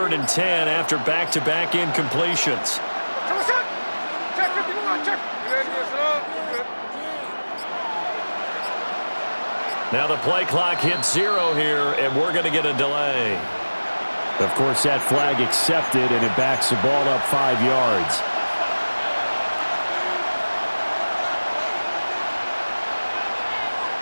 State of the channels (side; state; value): both; inverted; correlation -1.00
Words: and 10 after back-to-back incompletions. Check 51, check. Now the play clock hits 0 here, and we're going to get a delay. Of course, that flag accepted, and it backs the ball up 5 yards.